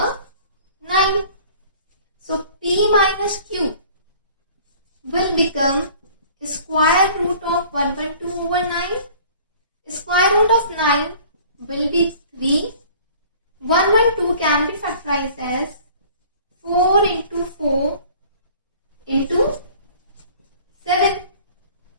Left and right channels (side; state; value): both; inverted; correlation -0.49